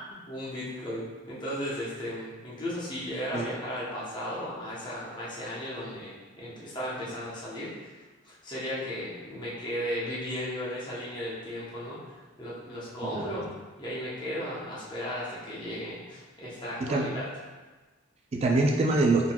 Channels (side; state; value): both; normal; correlation 0.53